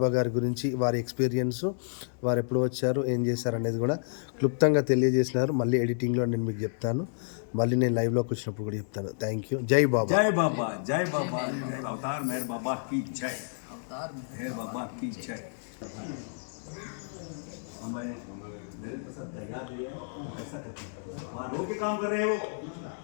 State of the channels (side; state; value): right; silent; digital silence